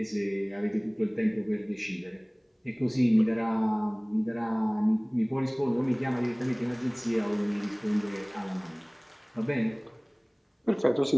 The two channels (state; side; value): identical; both; correlation 1.00